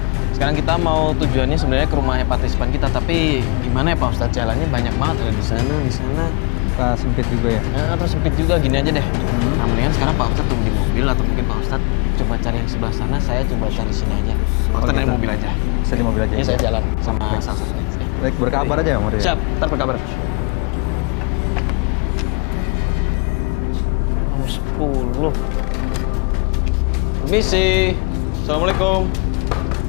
Sekarang kita mau tujuannya sebenarnya ke rumahnya partisipan kita, tapi gimana ya Pak Ustadz, jalannya banyak banget ada di sana. Sempit juga ya. Ya, terus sempit juga, gini aja deh. Nah, mendingan sekarang Pak Ustadz tunggu di mobil atau mungkin Pak Ustadz coba cari yang sebelah sana, saya coba cari sini aja. Pak Ustadz naik gitu. mobil aja. Bisa di mobil aja. Ini ya? saya jalan sama Baik. salah satunya. Baik, berkabar aja ya, Maria. Siap, ntar berkabar. Nomor 10. Permisi. Assalamualaikum.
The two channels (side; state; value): right; quieter; 31.5 dB